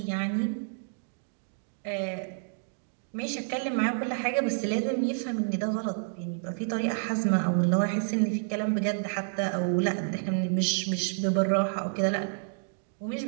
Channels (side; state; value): left; silent; digital silence